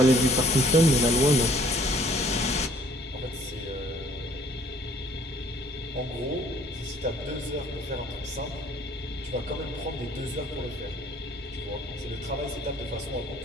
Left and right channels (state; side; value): normal; both; correlation 0.57